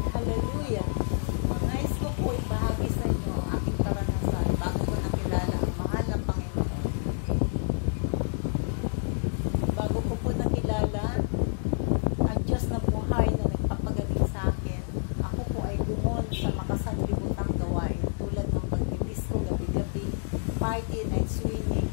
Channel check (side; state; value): right; silent; digital silence